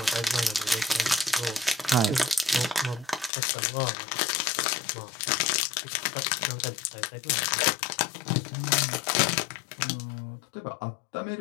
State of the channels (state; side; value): drops out; right; at 3.3 s